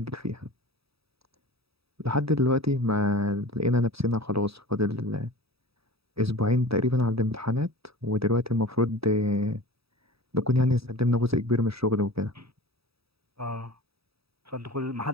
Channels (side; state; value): left; late; 0.77 ms